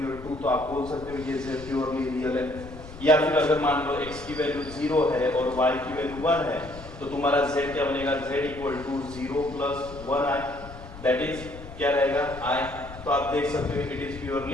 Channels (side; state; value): left; noise; rumble, 15 dB below the sound